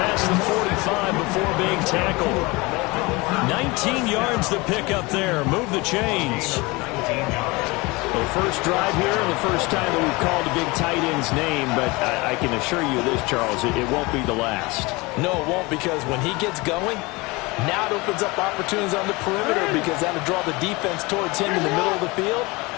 the 45 before being tackled. 19 yards to pick up there. Move the chains. The first drive here, and the first time that we've called a big tight end's name, but I can assure you this, Charles, it won't be the last. No, it won't, because when he gets going, now it opens up opportunities on the perimeter, because that'll draw the defense towards him in the middle of the field.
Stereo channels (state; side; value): quieter; right; 24.2 dB